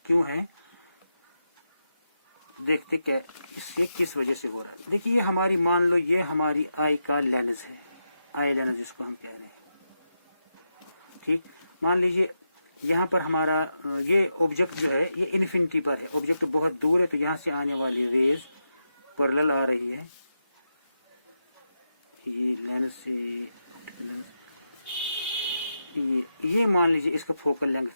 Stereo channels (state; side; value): inverted; both; correlation -0.87